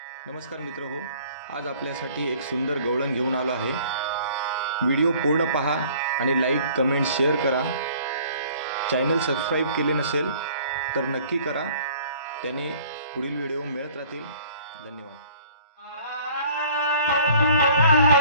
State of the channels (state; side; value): inverted; both; correlation -0.53